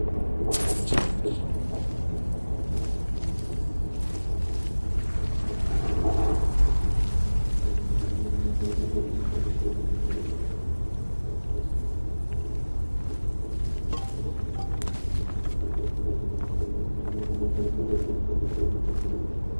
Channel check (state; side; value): inverted; both; correlation -1.00